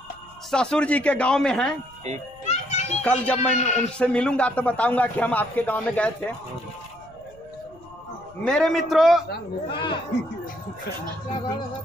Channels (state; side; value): noise; left; rumble, 26 dB below the sound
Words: ससुर जी के गांव में हैं। कल जब मैं उनसे मिलूंगा तो बताऊंगा कि हम आपके गांव में गए थे। मेरे मित्रों,